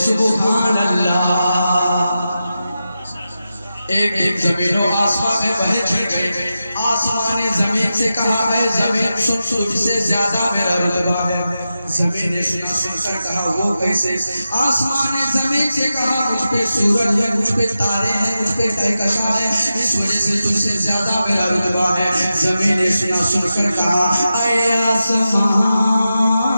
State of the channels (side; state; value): both; inverted; correlation -0.91